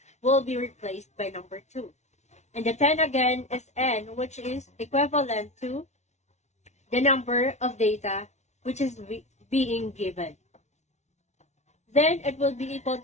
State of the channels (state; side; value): late; right; 0.32 ms